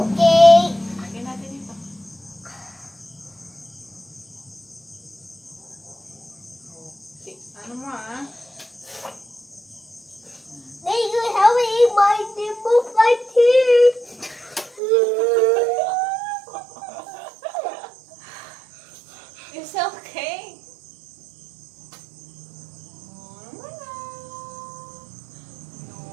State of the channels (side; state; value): left; drops out; at 14.8 s